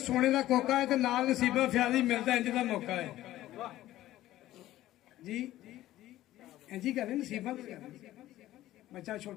ਦਾ ਕੋਕਾ ਹੈ ਤੇ ਨਾਲ ਨਸੀਬਾਂ ਫਿਆਦੀ ਮਿਲਦਾ ਇੰਜ ਦਾ ਮੌਕਾ ਹੈ ਜੀ ਇੰਜ ਹੀ ਕਰਦੇ ਨਸੀਬਾਂ ਤੇ ਬੱਚਾ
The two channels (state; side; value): quieter; right; 14.8 dB